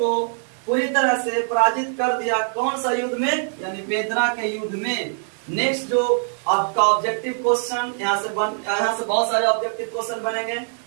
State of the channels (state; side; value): silent; left; 55 dB below the other